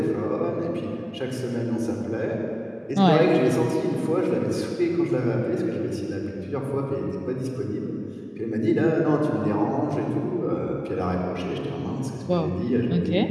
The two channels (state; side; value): identical; both; correlation 1.00